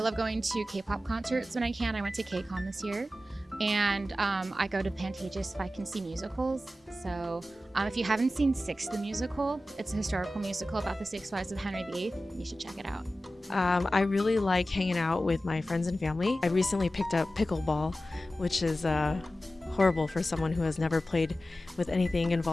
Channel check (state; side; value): normal; both; correlation 0.94